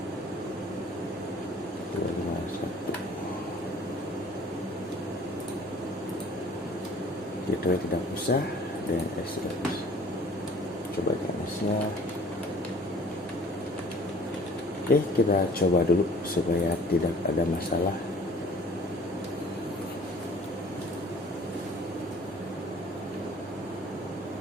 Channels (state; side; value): normal; both; correlation 0.51